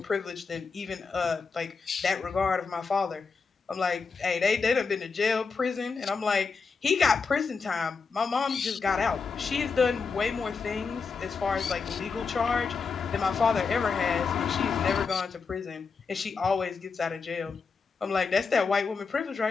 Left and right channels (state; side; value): quieter; right; 5.0 dB